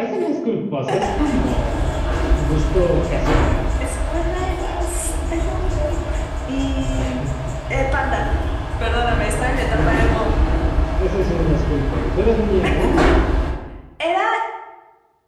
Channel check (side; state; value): both; identical; correlation 1.00